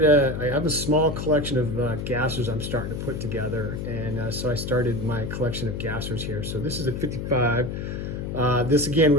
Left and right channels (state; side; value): noise; left; hum, 5 dB below the sound